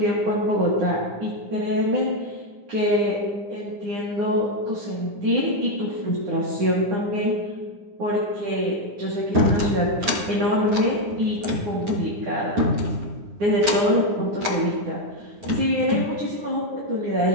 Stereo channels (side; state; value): left; late; 9.3 ms